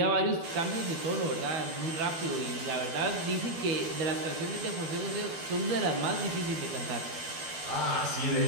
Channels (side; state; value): left; late; 12 ms